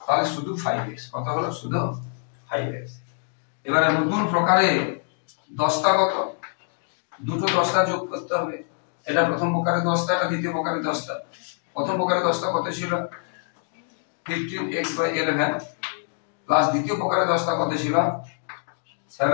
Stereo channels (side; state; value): right; silent; 62 dB below the other